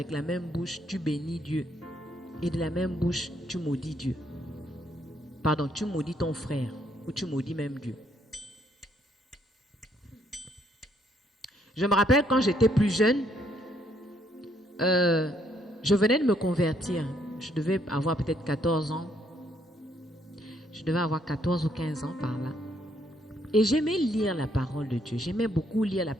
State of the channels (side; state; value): both; normal; correlation 0.70